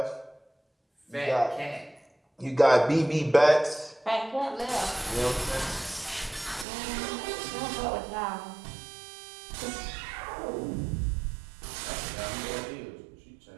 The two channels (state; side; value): drops out; left; at 6.7 s